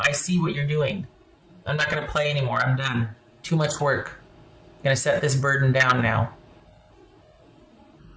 see what you're doing. I'm not going to play anymore. I'm done. Too much work. I'm going to set this burden down now.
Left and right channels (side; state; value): both; identical; correlation 1.00